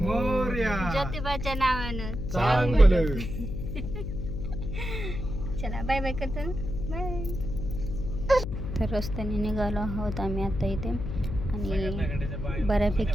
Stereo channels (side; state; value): left; noise; hum, 5 dB below the sound